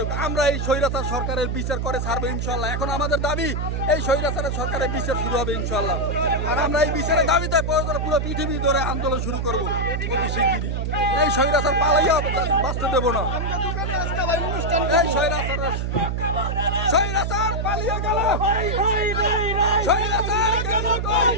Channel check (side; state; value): right; noise; hum, 1 dB below the sound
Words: আমরা এই স্বৈরাচার সরকারের বিচার করে ছাড়বো ইনশাআল্লাহ। এখন আমাদের দাবি এই স্বৈরাচারের সরকারের বিচার শুরু হবে ইনশাআল্লাহ। আর আমরা এই বিচারের দাবিতে প্রয়োজনে পুরো পৃথিবী ধরে আন্দোলন শুরু করবো অতি শিগগিরই। এই স্বৈরাচার পালাইয়া বাঁচতে দেবো না। এই স্বৈরাচার পালিয়ে গেল, স্বৈরাচার গেল কই,